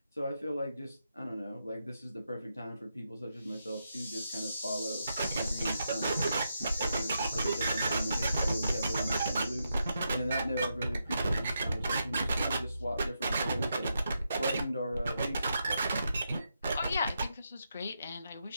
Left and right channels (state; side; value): inverted; both; correlation -0.84